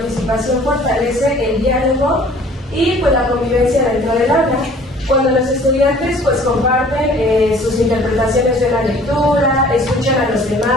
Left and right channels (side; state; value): both; normal; correlation 0.52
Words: fortalece el diálogo y pues la convivencia dentro del aula. Cuando los estudiantes pues comparten sus interpretaciones de la lectura, escuchan a los